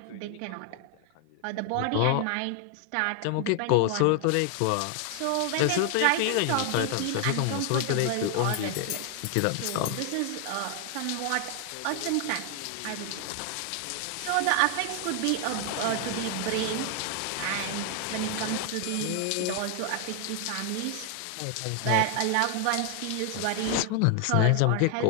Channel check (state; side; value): different; both; correlation 0.00